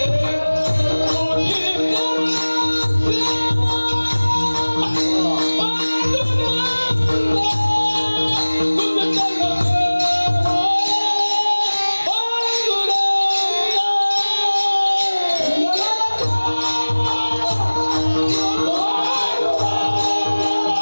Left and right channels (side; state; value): both; inverted; correlation -1.00